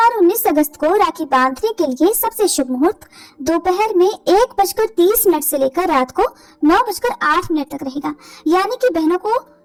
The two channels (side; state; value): both; identical; correlation 1.00